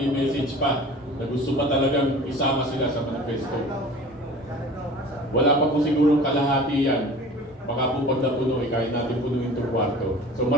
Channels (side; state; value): both; normal; correlation 0.42